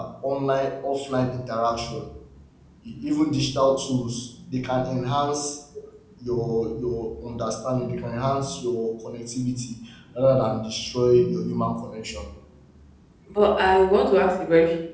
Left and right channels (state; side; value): identical; both; correlation 1.00